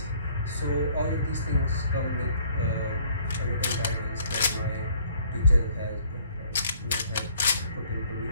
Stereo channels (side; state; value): both; inverted; correlation -0.59